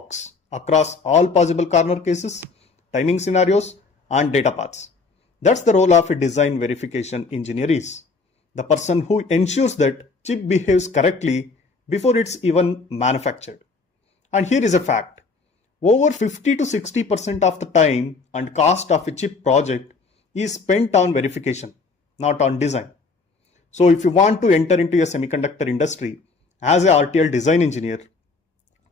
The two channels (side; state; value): right; quieter; 4.2 dB